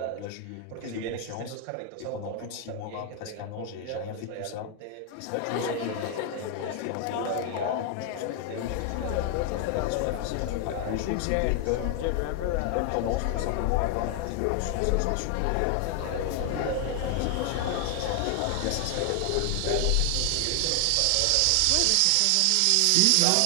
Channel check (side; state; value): both; different; correlation 0.00